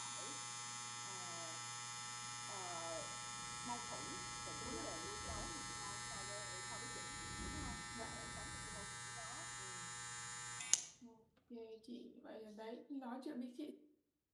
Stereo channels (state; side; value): identical; both; correlation 1.00